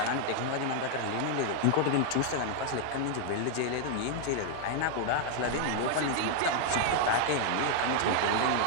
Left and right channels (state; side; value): different; both; correlation 0.00